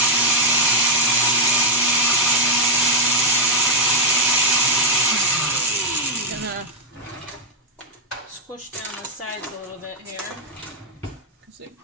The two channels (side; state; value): both; normal; correlation 0.01